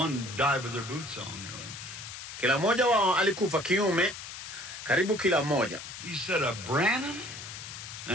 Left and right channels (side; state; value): left; noise; hiss, 10 dB below the sound